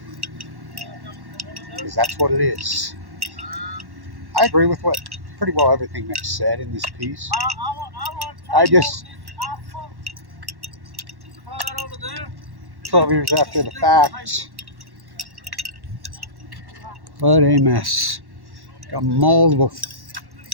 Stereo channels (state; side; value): late; left; 1.1 ms